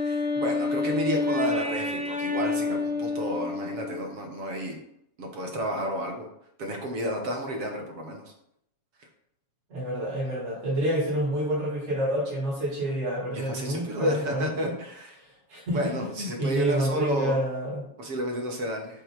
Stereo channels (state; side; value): late; left; 7.3 ms